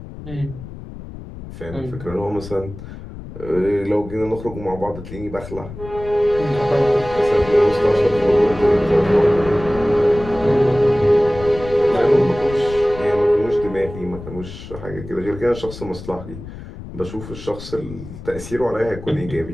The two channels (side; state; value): left; noise; rumble, 13 dB below the sound